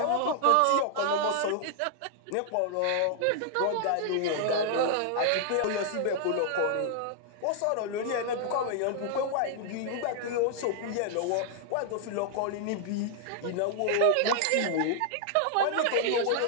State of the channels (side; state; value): both; different; correlation 0.00